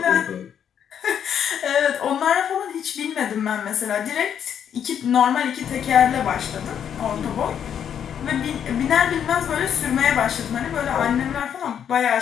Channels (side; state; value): right; quieter; 8.7 dB